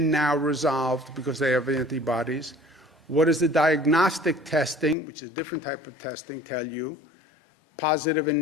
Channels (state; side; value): drops out; right; at 5.0 s